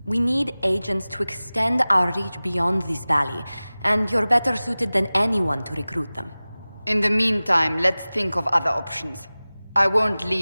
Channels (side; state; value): both; inverted; correlation -0.98